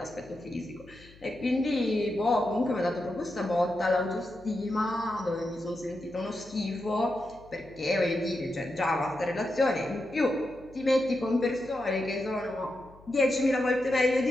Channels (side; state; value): left; noise; hum, 23 dB below the sound